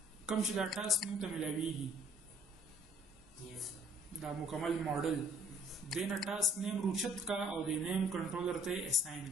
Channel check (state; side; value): normal; both; correlation 0.60